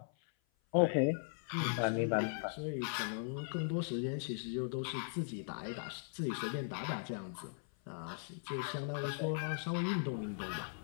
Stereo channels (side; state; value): right; silent; 52 dB below the other